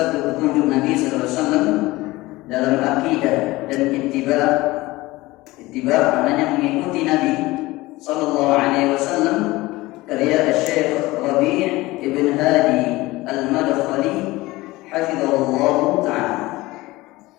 petunjuk Nabi sallallahu alaihi wasallam dalam akidah dan ittiba'. Ittiba' maknanya mengikuti Nabi sallallahu alaihi wasallam, karya Syekh Rabi' ibn Hadi Al-Madkhali hafizahullah ta'ala.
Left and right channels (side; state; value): right; quieter; 19.8 dB